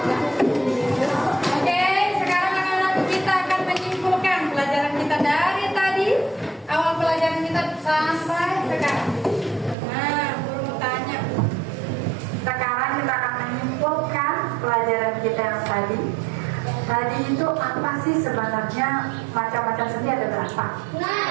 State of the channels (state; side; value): drops out; left; at 9.8 s